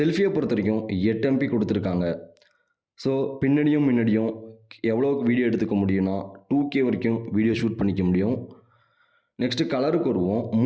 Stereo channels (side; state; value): both; identical; correlation 1.00